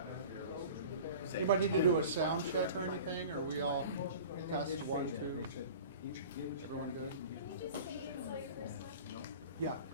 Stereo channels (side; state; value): both; inverted; correlation -0.40